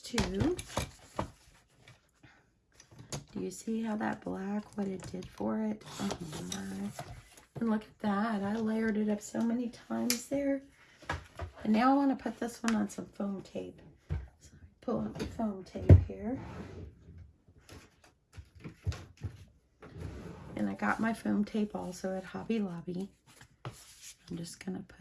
too. Do you see how that black, what it did for it? Oh my. And look at that. I layered it up so many times there. And now I want to put this one on some foam tape. So pull out the foam tape here. And I got my foam tape also at Hobby Lobby. I'm just going to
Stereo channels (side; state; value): both; identical; correlation 1.00